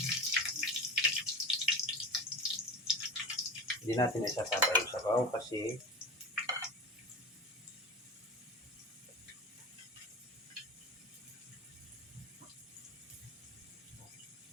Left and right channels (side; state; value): both; normal; correlation 0.27